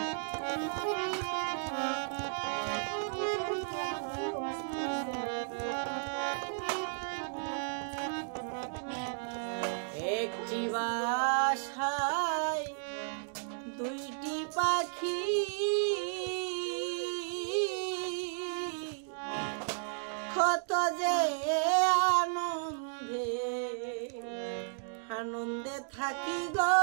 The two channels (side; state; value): left; silent; digital silence